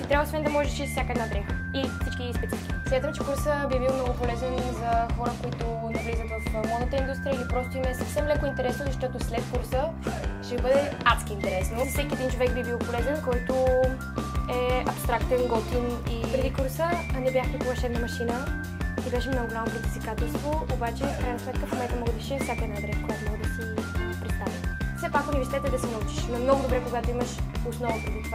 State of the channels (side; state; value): both; identical; correlation 1.00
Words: трябва, освен да можеш да шиеш всяка една дреха и всички специфики. Смятам, че курса би бил много полезен за хора, които навлизат в модната индустрия или просто им е съвсем леко интересно, защото след курса ще бъде адски интересно. За всеки един човек би бил полезен, който е абстрактен, готин и преди курса не бях никога шевна машина и беше много голямо предизвикателство, обаче в крайна сметка в момента мога да шия всяка една дреха, която мога да си представя. Все пак университет е да се научиш, но много добре, когато имаш основа преди